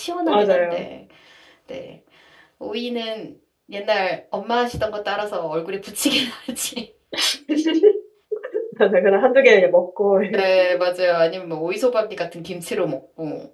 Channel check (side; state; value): both; identical; correlation 1.00